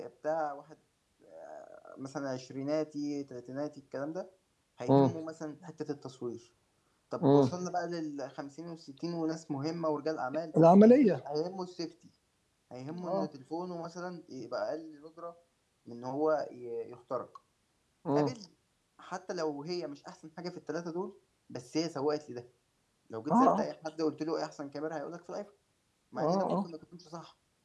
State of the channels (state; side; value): identical; both; correlation 1.00